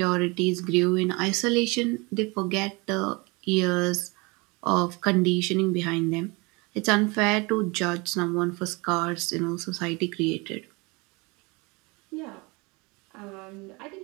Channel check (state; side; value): quieter; left; 27.0 dB